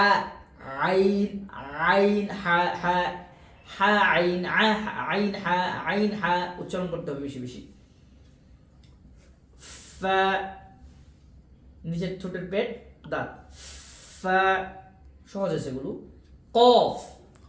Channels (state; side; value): identical; both; correlation 1.00